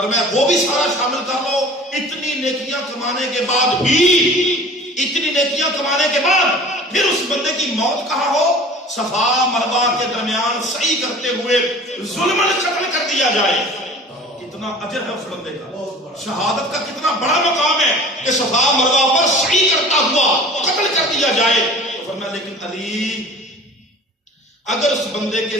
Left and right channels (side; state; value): both; normal; correlation 0.43